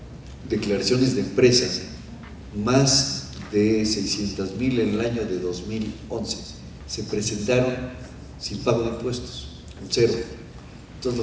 declaraciones de empresa, más de 600,000 en el año de 2011 se presentaron sin pago de impuestos, con cero.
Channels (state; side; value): identical; both; correlation 1.00